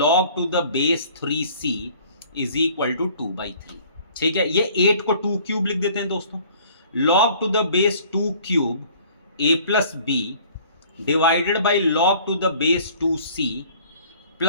to the base 3c is equal to 2/3, ठीक है। ये 8 को 2 cube लिख देते हैं दोस्तों, log to the base 2 cube a plus b divided by log to the base 2c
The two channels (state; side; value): inverted; both; correlation -0.52